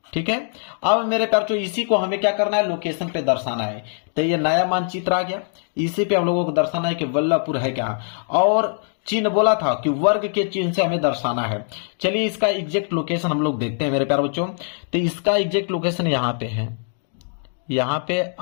ठीक है, अब मेरे प्यारे बच्चों इसी को हमें क्या करना है? लोकेशन पे दर्शाना है। तो ये नया मानचित्र आ गया, इसी पे हम लोगों को दर्शाना है कि वल्लभपुर है क्या। और चिन्ह बोला था कि वर्ग के चिन्ह से हमें दर्शाना है। चलिए इसका एग्जैक्ट लोकेशन हम लोग देखते हैं मेरे प्यारे बच्चों। तो इसका एग्जैक्ट लोकेशन यहाँ पे है, यहाँ पे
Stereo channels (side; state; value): right; silent; digital silence